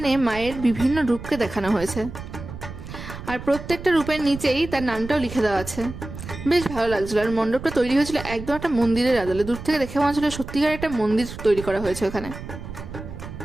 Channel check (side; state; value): right; noise; rumble, 11 dB below the sound